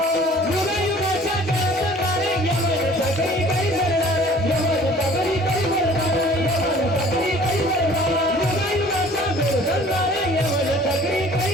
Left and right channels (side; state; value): both; normal; correlation 0.50